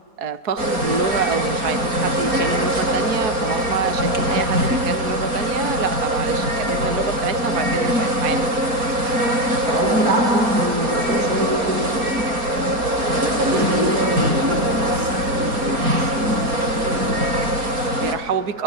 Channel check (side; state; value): left; late; 4.3 ms